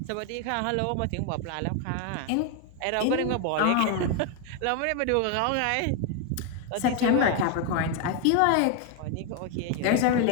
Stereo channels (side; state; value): both; different; correlation 0.01